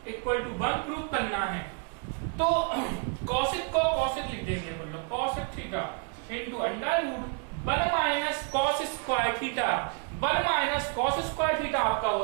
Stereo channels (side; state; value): left; quieter; 36.5 dB